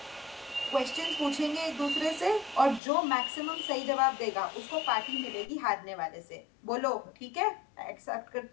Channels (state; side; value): drops out; right; at 2.8 s